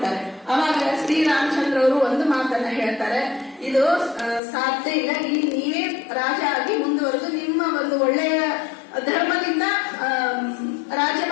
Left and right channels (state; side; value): drops out; right; at 4.4 s